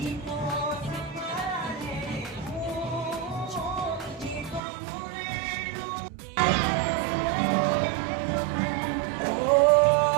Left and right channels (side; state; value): left; drops out; at 4.6 s